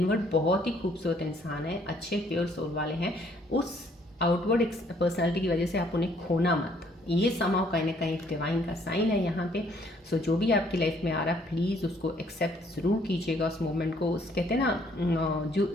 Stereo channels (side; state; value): both; normal; correlation 0.64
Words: बहुत ही खूबसूरत इंसान है, अच्छे प्योर सोल वाले हैं, उस आउटवर्ड पर्सनालिटी की वजह से आप उन्हें खोना मत। ये समाव कहीं ना कहीं डिवाइन का साइन है यहाँ पे। सो जो भी आपकी लाइफ में आ रहा है प्लीज़ उसको एक्सेप्ट ज़रूर कीजिएगा, उस मोमेंट को। उस कहते हैं ना, जो